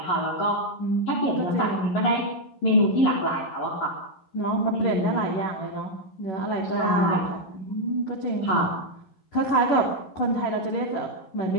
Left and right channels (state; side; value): late; right; 11 ms